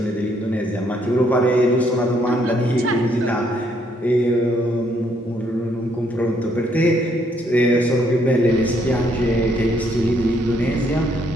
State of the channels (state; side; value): normal; both; correlation 0.70